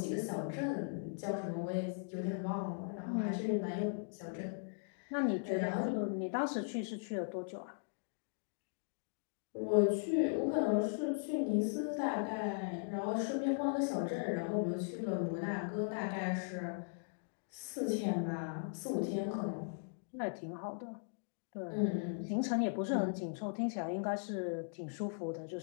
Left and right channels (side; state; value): right; silent; digital silence